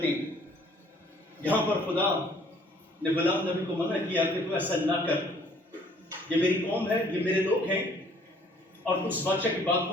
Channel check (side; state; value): both; normal; correlation 0.59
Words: ہیں یہاں پر خدا نے بلام نبی کو منع کیا کہ تو ایسا نہ کر یہ میری قوم ہے یہ میرے لوگ ہیں اور تو اس بادشاہ کی بات